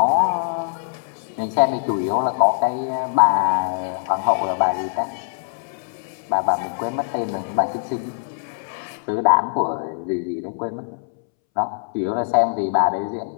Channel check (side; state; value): right; silent; 64 dB below the other